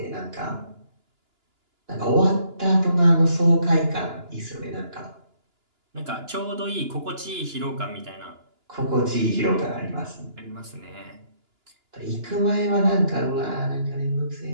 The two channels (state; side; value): late; left; 2.9 ms